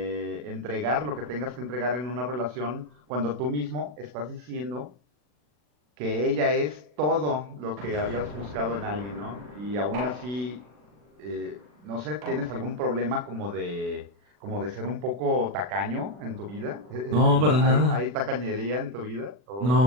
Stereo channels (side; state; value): left; late; 40 ms